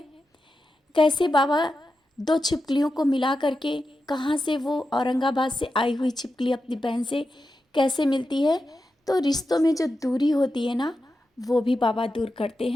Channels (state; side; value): normal; both; correlation 0.90